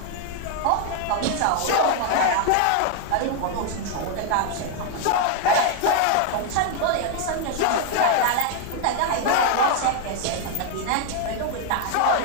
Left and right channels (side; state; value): both; different; correlation 0.00